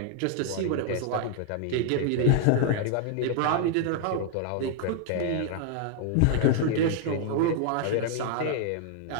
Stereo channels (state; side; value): different; both; correlation 0.00